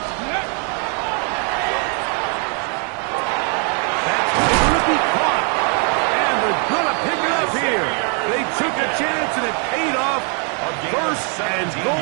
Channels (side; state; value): left; quieter; 39.4 dB